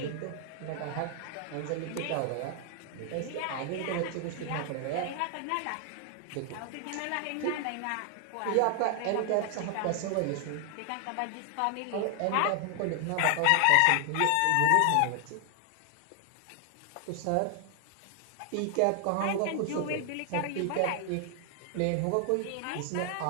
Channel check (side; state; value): both; different; correlation 0.00